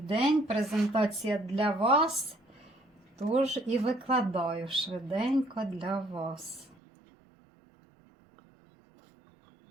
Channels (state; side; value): drops out; left; at 6.8 s